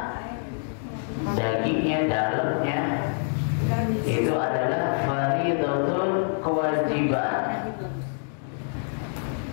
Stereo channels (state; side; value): silent; right; 60 dB below the other